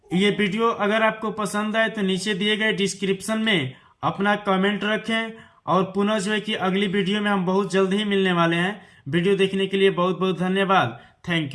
ये वीडियो अगर आपको पसंद आए तो नीचे दिए गए डिस्क्रिप्शन में अपना कमेंट रखें, और पुनः जो है कि अगली वीडियो में हम बहुत जल्द ही मिलने वाले हैं। वीडियो देखने के लिए बहुत बहुत धन्यवाद। Thank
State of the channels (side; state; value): both; identical; correlation 1.00